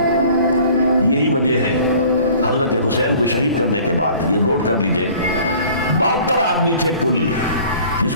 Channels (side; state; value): both; inverted; correlation -0.49